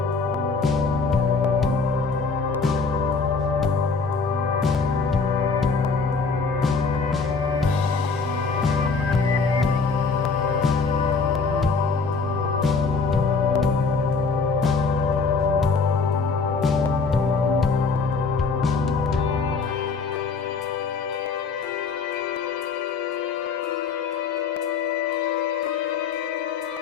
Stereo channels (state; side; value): quieter; right; 4.7 dB